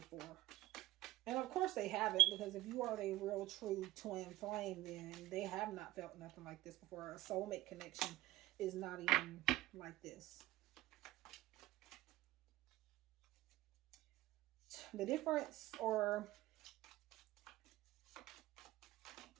And of course they haven't, because if you are a real true twin flame, then they have not felt nothing like this before. A soulmate connection is not even like this. The difference, or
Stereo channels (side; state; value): left; quieter; 16.5 dB